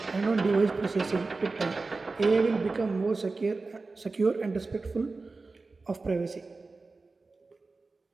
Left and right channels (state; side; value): quieter; left; 3.8 dB